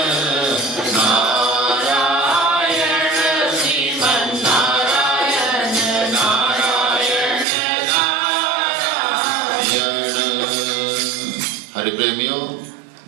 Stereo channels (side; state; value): left; drops out; at 7.5 s